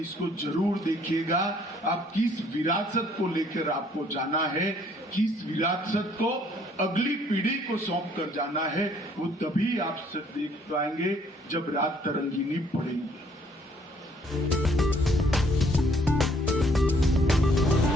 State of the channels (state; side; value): normal; both; correlation 0.62